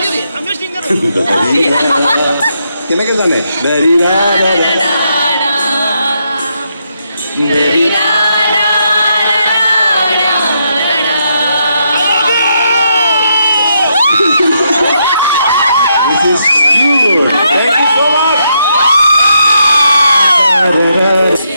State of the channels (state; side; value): inverted; both; correlation -0.79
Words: কেনেকে জানে dari ra ra ra dari ra. This is cute. Thank you so much.